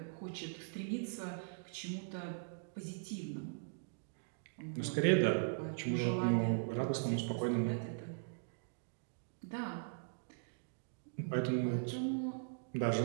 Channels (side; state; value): left; silent; digital silence